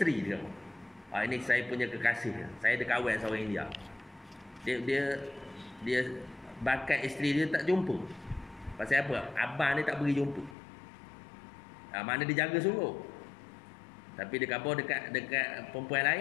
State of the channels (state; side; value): drops out; right; at 10.6 s